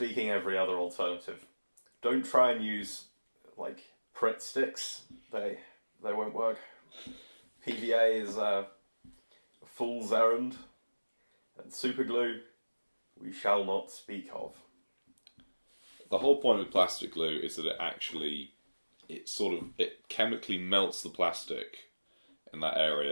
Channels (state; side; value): inverted; both; correlation -1.00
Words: every other alternative. Don't try and use, like, Pritt sticks. They won't work. PVA is a fool's errand. And super glue, we shall not speak of. The whole point with plastic glue is that it chemically melts the plastic in that